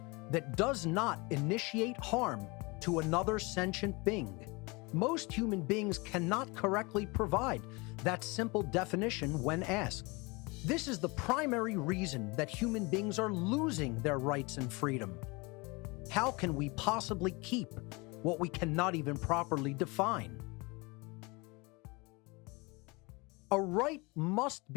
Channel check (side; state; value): right; quieter; 26.7 dB